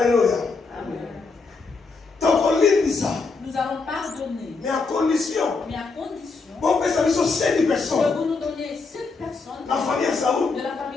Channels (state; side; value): quieter; right; 4.3 dB